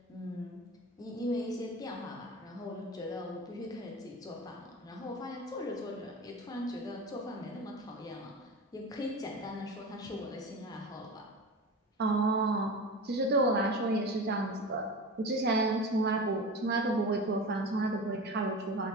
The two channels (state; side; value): normal; both; correlation 0.31